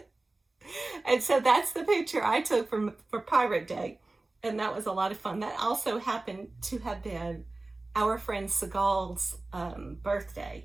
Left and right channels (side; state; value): left; quieter; 3.1 dB